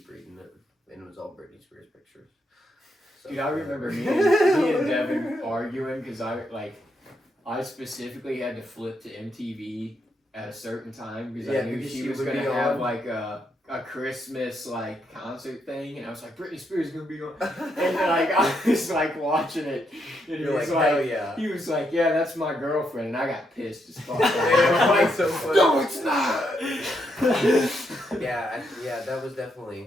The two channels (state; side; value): normal; both; correlation 0.78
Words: reading it, and it was all Britney Spears pictures. So, Dude, I remember me and Devin arguing because I specifically had to flip to MTV at a certain time because I knew because she she was would gonna be have on. like a Christmas like concert thing, and I was like, Britney Spears is gonna be on, and like I was like watching it, and he You're was like, hell like, yeah. he was like, yeah, that's my girlfriend, and I got pissed as fuck. Like, so funny. No, it's not. Yeah, that was